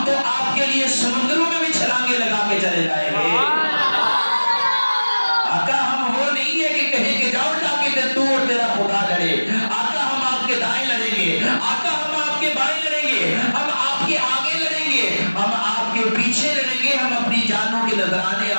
تو آپ کے لیے سمندروں میں بھی چھلانگے لگا کے چلے جائیں گے. آقا ہم وہ نہیں ہے کہ کہیں کہ جاؤ جا کے تو اور تیرا خدا لڑے. آقا ہم آپ کے دائیں لڑیں گے, آقا ہم آپ کے بائیں لڑیں گے, ہم آپ کے آگے لڑیں گے, ہم آپ کے پیچھے لڑیں گے, ہم اپنی جانوں کے نذرانے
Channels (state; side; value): inverted; both; correlation -1.00